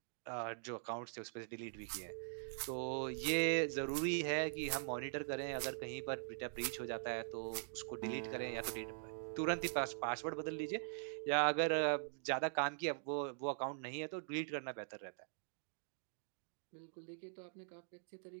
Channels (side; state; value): left; silent; digital silence